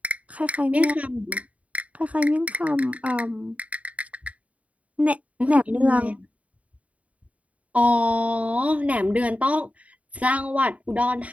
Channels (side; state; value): left; late; 0.067 ms